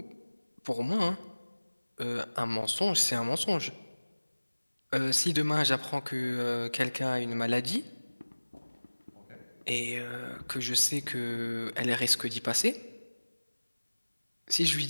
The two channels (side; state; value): both; inverted; correlation -1.00